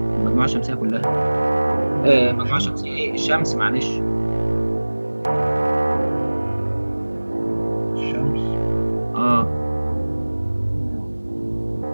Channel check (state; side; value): inverted; both; correlation -1.00